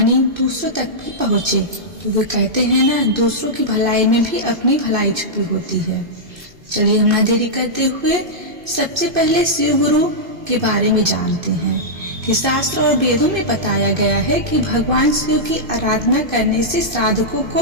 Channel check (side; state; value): left; late; 2.5 ms